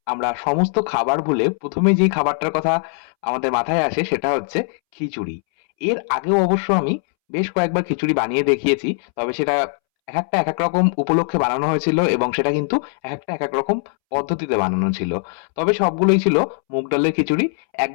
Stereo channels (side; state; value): right; silent; 66 dB below the other